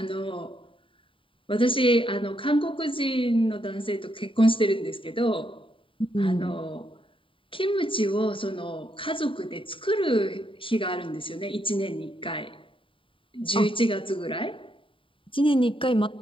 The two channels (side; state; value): right; late; 0.25 ms